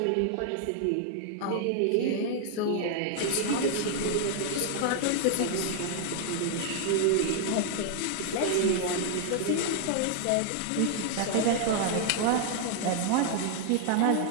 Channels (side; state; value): both; different; correlation 0.00